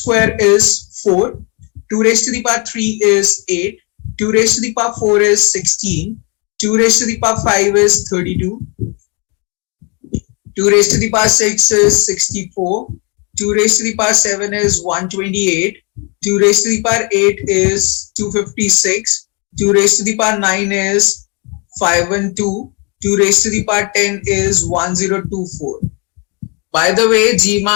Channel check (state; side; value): quieter; right; 33.2 dB